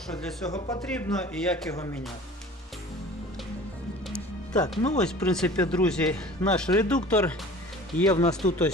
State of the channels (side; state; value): both; normal; correlation 0.43